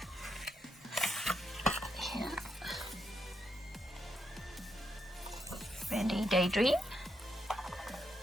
here, Randy Daydream,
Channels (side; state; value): both; normal; correlation 0.80